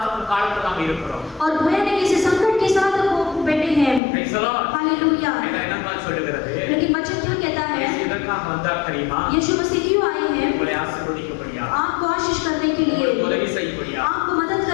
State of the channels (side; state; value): right; drops out; at 4.0 s